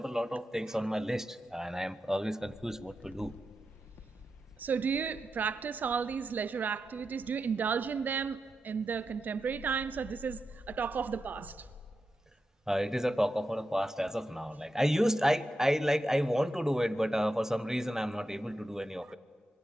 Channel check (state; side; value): normal; both; correlation 0.89